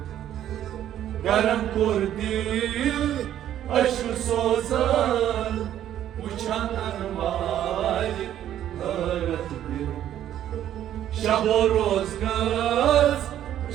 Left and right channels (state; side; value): quieter; left; 11.4 dB